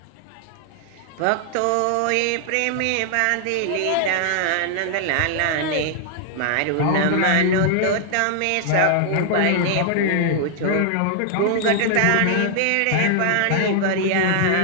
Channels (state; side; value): different; both; correlation -0.01